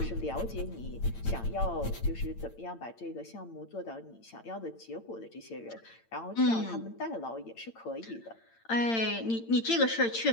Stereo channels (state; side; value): late; right; 8.8 ms